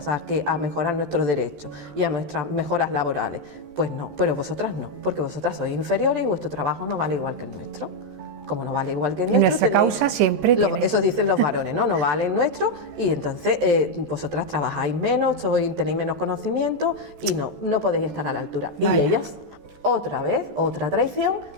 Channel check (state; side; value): late; left; 14 ms